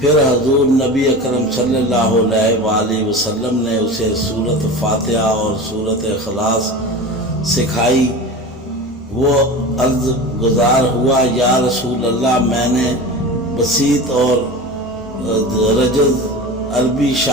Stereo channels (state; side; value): normal; both; correlation 0.31